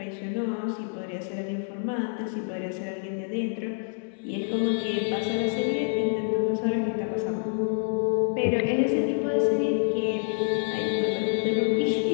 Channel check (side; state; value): right; silent; digital silence